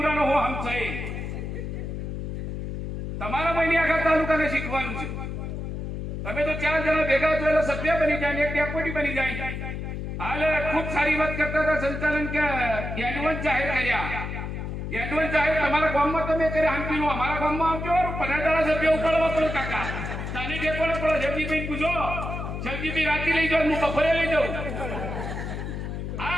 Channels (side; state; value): left; noise; hum, 5 dB below the sound